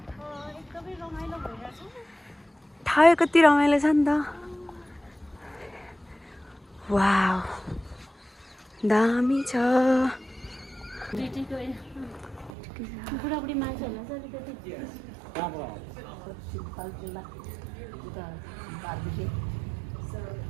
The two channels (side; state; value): left; drops out; at 12.5 s